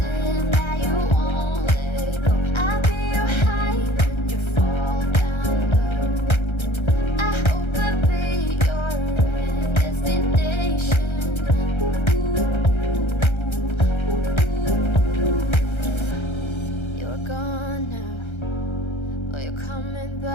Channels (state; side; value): late; right; 1.3 ms